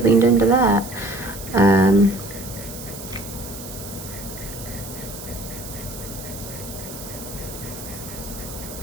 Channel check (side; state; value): right; noise; hiss, 12 dB below the sound